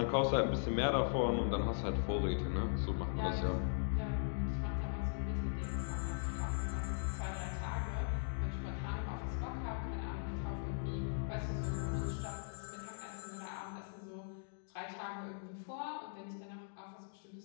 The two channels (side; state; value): right; silent; digital silence